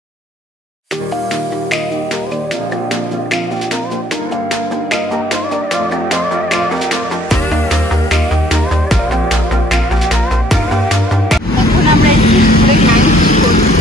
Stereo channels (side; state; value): both; normal; correlation 0.63